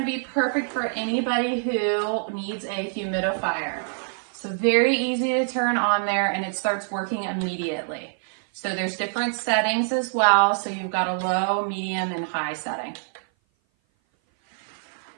be perfect for anybody who needs a humidifier. So very easy to turn on there, and it starts working immediately. So there's different settings as well. So you've got a low, medium, and high setting.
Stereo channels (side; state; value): left; silent; 57 dB below the other